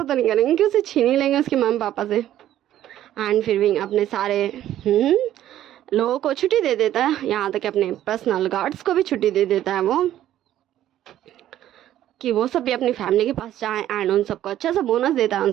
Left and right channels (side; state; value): left; quieter; 12.4 dB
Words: तो नहीं करेंगे कि उसे छीन ही लेंगे उसके मम्मी पापा से। एंड फिर विंग अपने सारे लोगों को छुट्टी दे देता है, यहाँ तक अपने पर्सनल गार्ड्स को भी छुट्टी दे देता है वो, कि वो सब भी अपनी फैमिली के पास जाएं। एंड उन सबको अच्छा सा बोनस देता है, उन